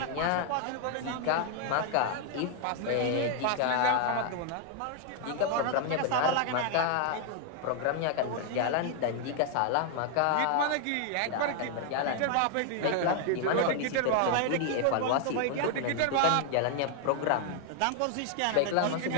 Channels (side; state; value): both; different; correlation 0.00